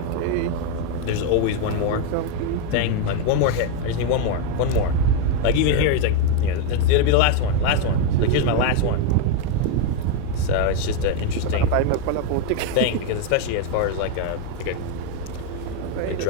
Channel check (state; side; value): different; both; correlation 0.02